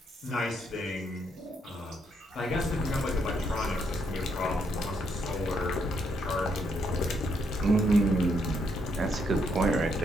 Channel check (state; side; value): normal; both; correlation 0.76